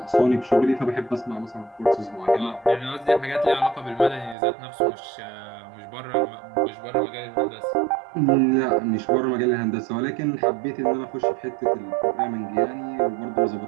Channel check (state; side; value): drops out; left; at 4.4 s